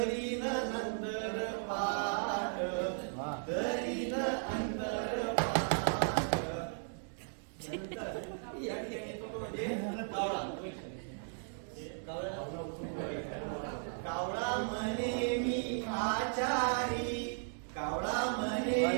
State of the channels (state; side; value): silent; left; digital silence